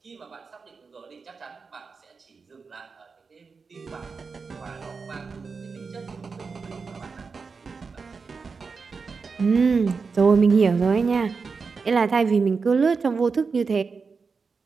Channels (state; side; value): quieter; left; 4.9 dB